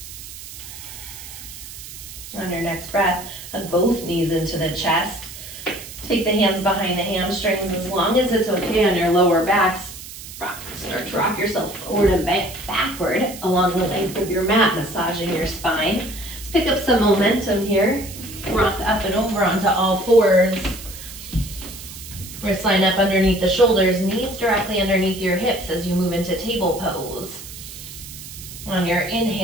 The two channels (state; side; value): noise; right; hiss, 13 dB below the sound